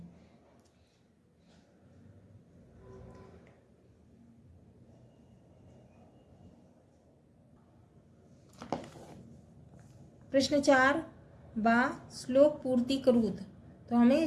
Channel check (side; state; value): both; identical; correlation 1.00